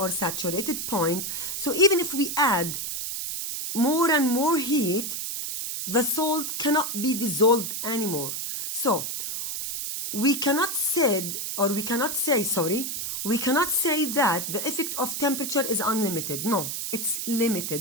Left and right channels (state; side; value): noise; right; hiss, 4 dB below the sound